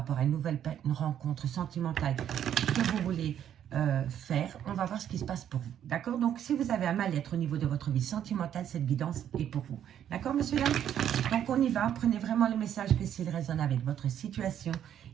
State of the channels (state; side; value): quieter; left; 10.0 dB